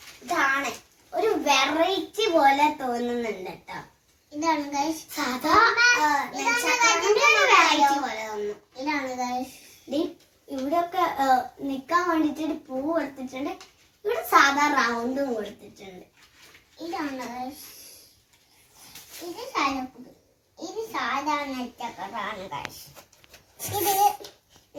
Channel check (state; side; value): identical; both; correlation 1.00